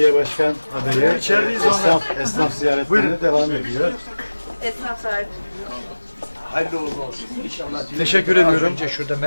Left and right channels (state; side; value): inverted; both; correlation -1.00